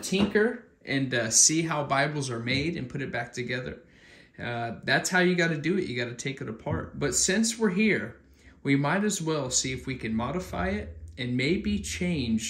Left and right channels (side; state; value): both; identical; correlation 1.00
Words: and see how Bibles are made and put it back together, that's how you got to do it. You got to take it apart. But since we're here, we might as well see if we can modify it and maybe